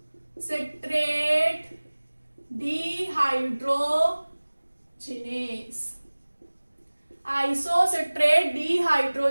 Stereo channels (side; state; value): both; inverted; correlation -1.00